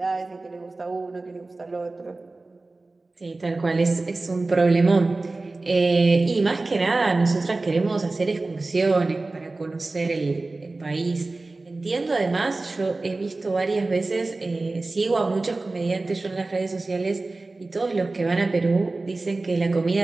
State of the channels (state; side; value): quieter; left; 3.3 dB